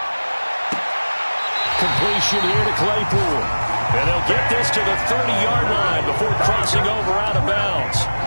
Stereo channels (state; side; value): inverted; both; correlation -1.00